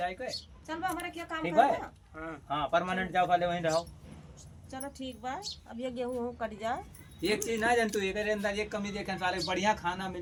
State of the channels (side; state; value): both; identical; correlation 1.00